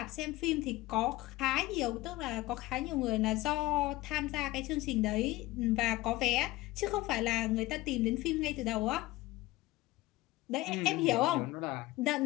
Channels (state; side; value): quieter; right; 18.6 dB